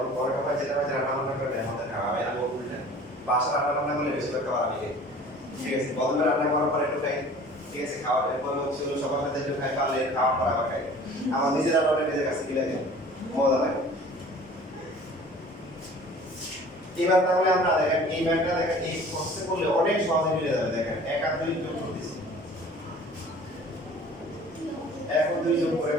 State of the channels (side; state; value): both; normal; correlation 0.46